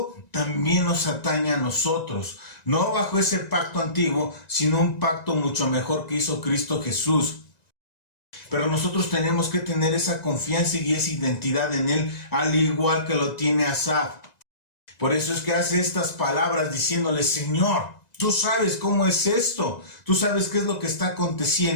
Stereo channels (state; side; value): late; right; 1.9 ms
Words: también nos atañe a nosotros, no bajo ese pacto antiguo, sino un pacto mucho mejor que hizo Cristo Jesús. Pero nosotros tenemos que tener esa confianza y esa identidad en Él, al igual que lo tiene Asaf. Por eso es que hace estas palabras diciéndole: Señor, tú sabes cómo es esto, tú sabes qué es lo que está